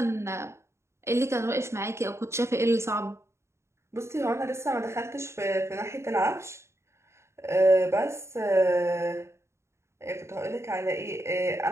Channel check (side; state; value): left; late; 0.13 ms